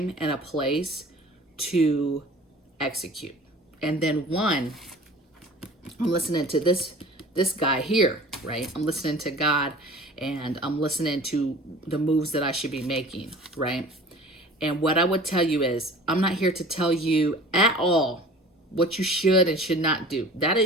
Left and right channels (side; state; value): both; normal; correlation 0.44